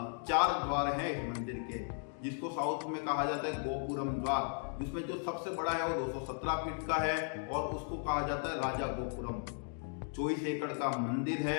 4 द्वार है इस मंदिर के, जिसको साउथ में कहा जाता है गोपुरम द्वार, जिसमें जो सबसे बड़ा है वो 217 फीट का है और उसको कहा जाता है राजा गोपुरम। 24 एकड़ का मंदिर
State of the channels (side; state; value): right; silent; 54 dB below the other